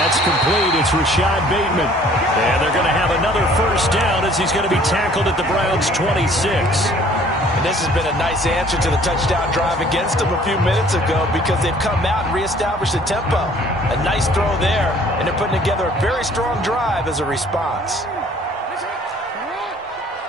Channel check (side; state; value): both; normal; correlation 0.55